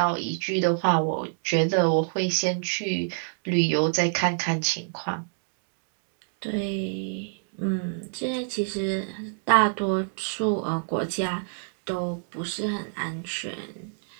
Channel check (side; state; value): left; silent; digital silence